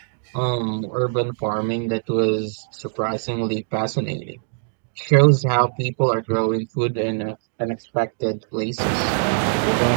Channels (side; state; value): left; silent; digital silence